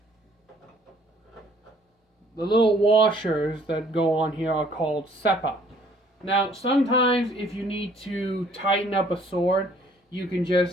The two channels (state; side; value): normal; both; correlation 0.60